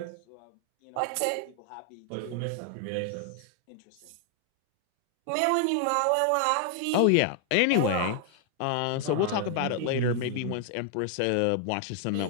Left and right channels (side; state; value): both; different; correlation 0.00